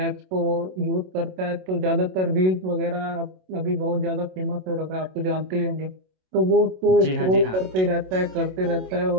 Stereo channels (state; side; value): late; left; 27 ms